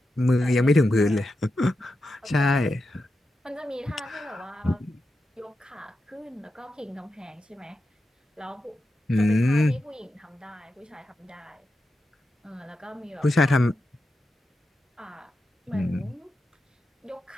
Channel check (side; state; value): both; normal; correlation 0.89